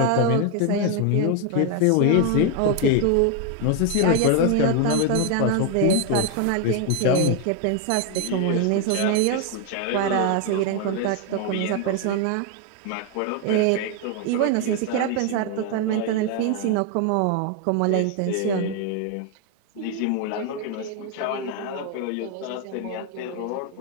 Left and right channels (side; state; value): both; different; correlation 0.01